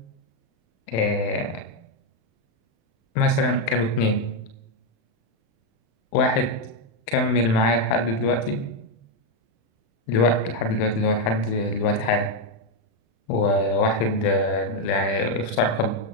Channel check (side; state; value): right; late; 35 ms